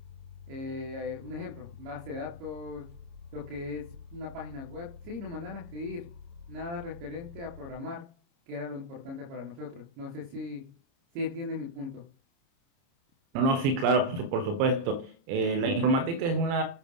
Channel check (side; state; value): left; late; 30 ms